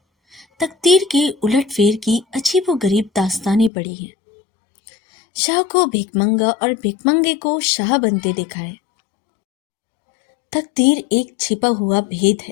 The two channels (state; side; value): drops out; right; at 3.7 s